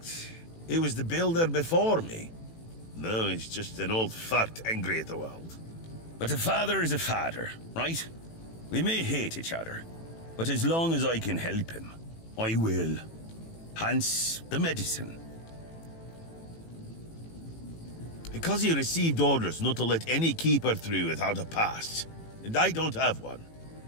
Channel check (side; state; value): right; late; 18 ms